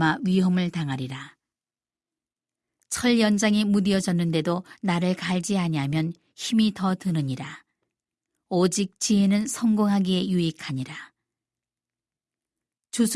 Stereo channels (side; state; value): both; identical; correlation 1.00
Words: 위험을 당하리라. 철 연장이 무디어졌는데도 나를 갈지 아니하면 힘이 더 드느니라. 오직 지혜는 성공하기에 유익하니라.